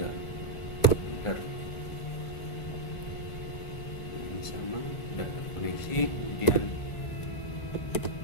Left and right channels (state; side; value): late; right; 1.4 ms